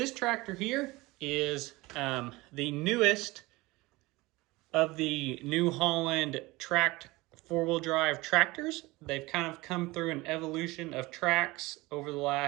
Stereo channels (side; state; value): left; quieter; 21.5 dB